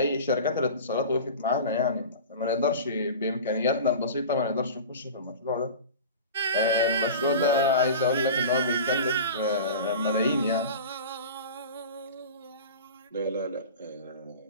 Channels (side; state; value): both; inverted; correlation -0.34